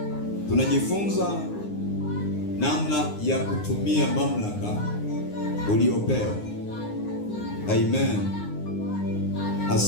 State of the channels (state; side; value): late; right; 9.7 ms